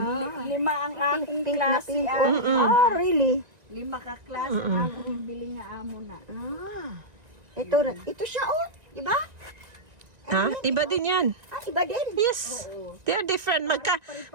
Lima ang aking Pink na klase. pink. Really? Lima ka klase ang akong bili nga amo na. Ito siya, oh. Diba? Ha? Iba din yan. Iba din. Yes. They're different.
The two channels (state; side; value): late; left; 1.9 ms